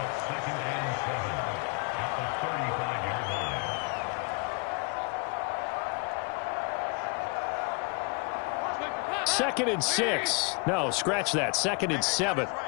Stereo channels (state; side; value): quieter; right; 32.6 dB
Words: Second and 6. No, scratch that. 2nd and 7.